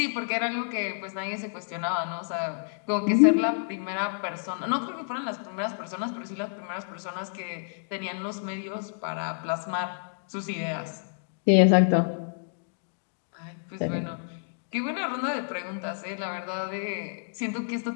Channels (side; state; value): right; silent; digital silence